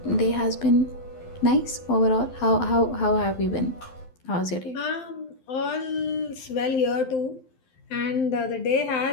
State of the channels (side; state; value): right; late; 12 ms